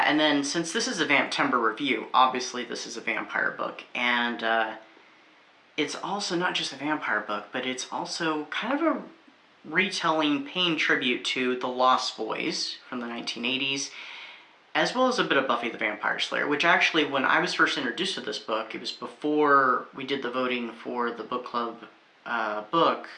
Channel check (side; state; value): both; identical; correlation 1.00